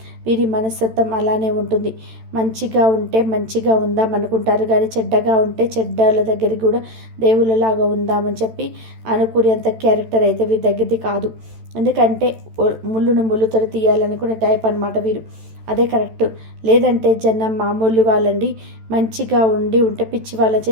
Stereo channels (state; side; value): late; left; 13 ms